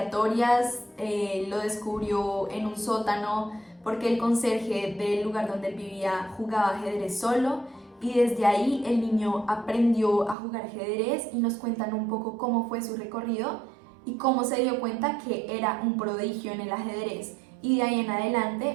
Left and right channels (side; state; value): left; drops out; at 10.4 s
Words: Lo descubrió en un sótano porque el conserje del lugar donde él vivía jugaba ajedrez solo. Y desde ahí el niño aprendió a jugar ajedrez y nos cuentan un poco cómo fue su recorrido y cómo se dio cuenta que era un prodigio en el ajedrez. Y de ahí en